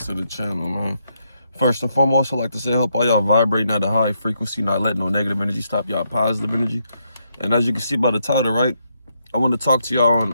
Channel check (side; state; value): both; inverted; correlation -0.78